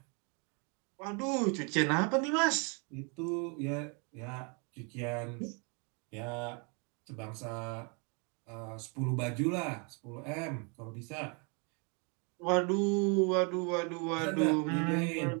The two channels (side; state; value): left; quieter; 34.8 dB